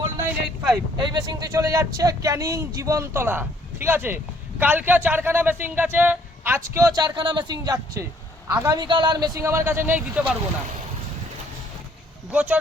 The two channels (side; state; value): both; normal; correlation 0.64